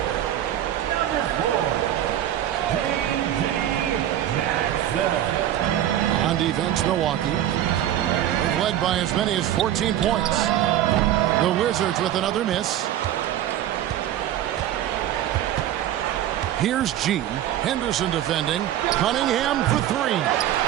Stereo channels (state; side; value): quieter; left; 11.9 dB